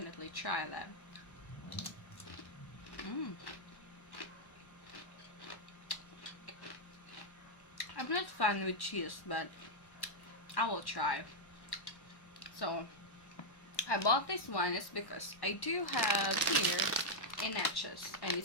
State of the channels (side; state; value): right; late; 1.1 ms